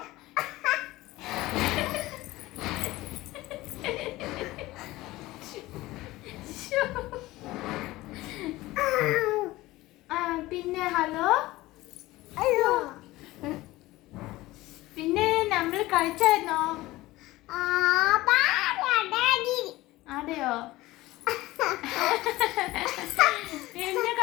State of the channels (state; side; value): quieter; right; 18.4 dB